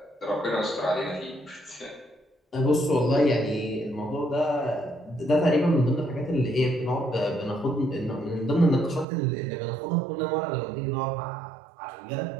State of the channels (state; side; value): drops out; left; at 9.1 s